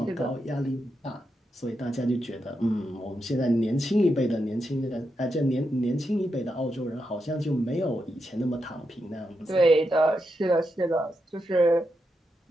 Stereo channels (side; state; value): both; normal; correlation 0.85